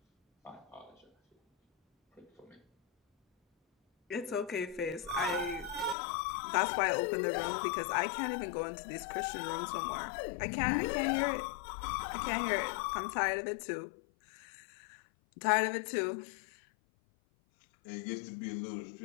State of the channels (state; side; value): drops out; right; at 6.0 s